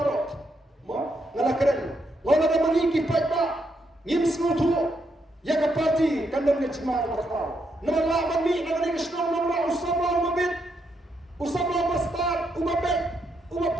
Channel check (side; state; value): both; normal; correlation 0.79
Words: Ma ngala keren. Ngala ada mangi ki pa ngim suatu. Ya ke parti kandang ke cima bakal. Nama lawan ni nama ni kesnong nama usama umabit. Usama bastard umabit.